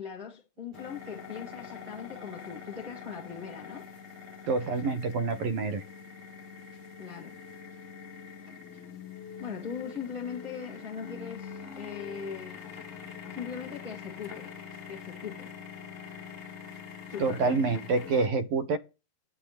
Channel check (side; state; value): left; late; 11 ms